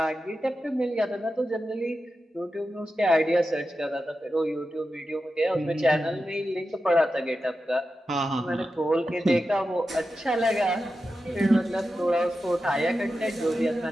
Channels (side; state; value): both; normal; correlation 0.91